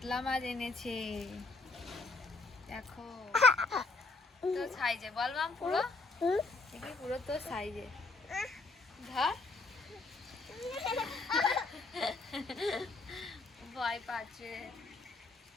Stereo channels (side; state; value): right; quieter; 3.6 dB